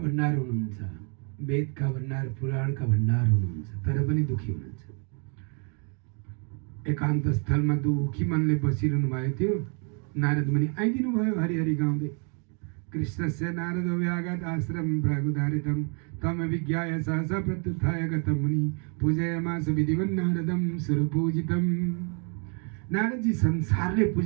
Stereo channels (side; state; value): left; quieter; 38.6 dB